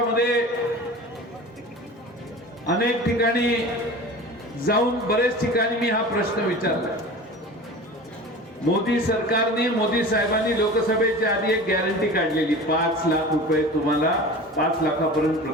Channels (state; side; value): normal; both; correlation 0.36